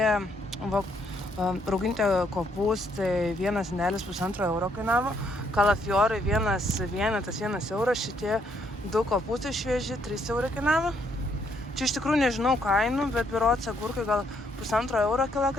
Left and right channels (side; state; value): both; normal; correlation 0.71